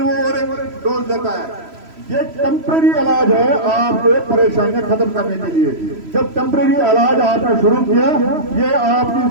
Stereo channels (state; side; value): late; left; 3.0 ms